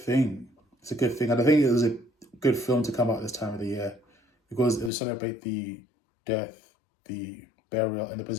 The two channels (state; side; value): drops out; right; at 4.9 s